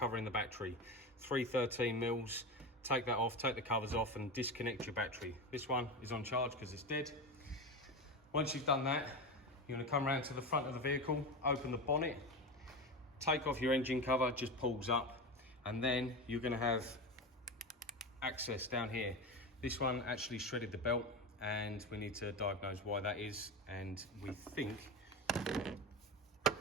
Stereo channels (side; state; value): both; normal; correlation 0.22